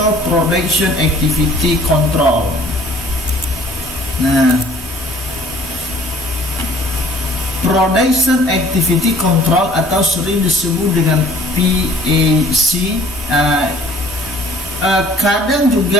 production activity control. Nah, production activity control atau sering disebut dengan PAC, kadang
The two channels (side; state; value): both; normal; correlation 0.53